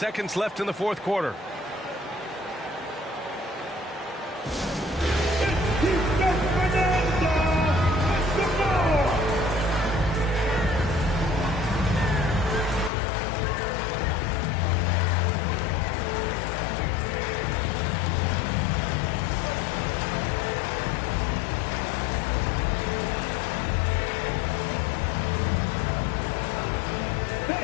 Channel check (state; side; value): drops out; right; at 12.9 s